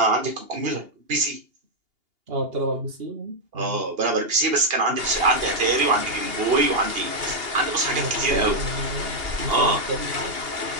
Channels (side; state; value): left; late; 2.8 ms